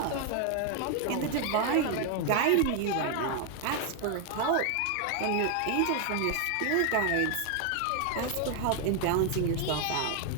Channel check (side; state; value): both; different; correlation 0.01